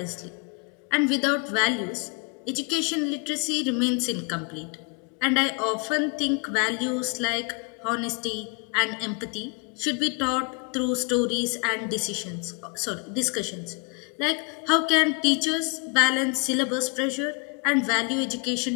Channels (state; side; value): quieter; right; 34.0 dB